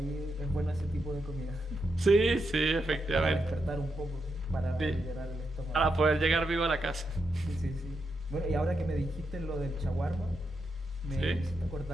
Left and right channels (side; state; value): both; normal; correlation 0.84